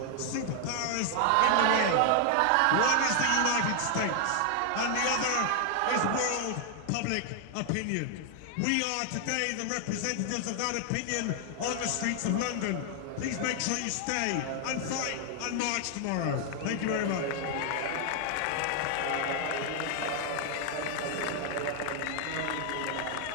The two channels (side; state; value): both; different; correlation 0.00